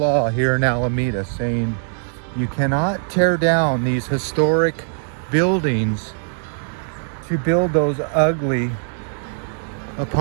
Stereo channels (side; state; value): left; silent; 65 dB below the other